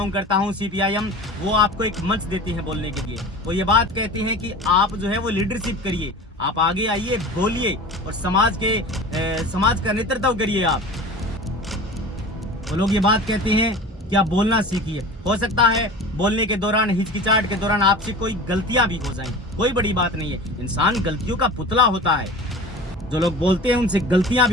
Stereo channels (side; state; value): both; normal; correlation 0.36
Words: करता हूं, CPIM, वो आपको एक मंच देती है बोलने के लिए। वो ये बात कहते हैं कि आप जो है वो लीडरशिप करिए, आप आगे आइए, बोलिए और समाज का नेतृत्व करिए आप। वो लोग ये बात कहते हैं कि आप बोलना सीखिए। हो सकता है बोलने के दौरान, हिचकिचाहट के दौरान आपसे कोई गलतियां भी हो जाएं, कोई बड़ी बात नहीं है। इंसान गलतियों का पुतला होता है। जो लोग बोलते हैं उनसे गलतियां